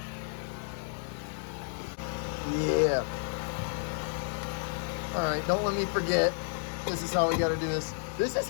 Yeah. All right, don't let me forget. This is how we gotta do this. This is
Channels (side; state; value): right; silent; 57 dB below the other